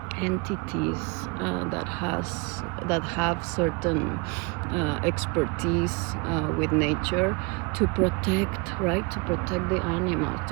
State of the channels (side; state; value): left; quieter; 29.8 dB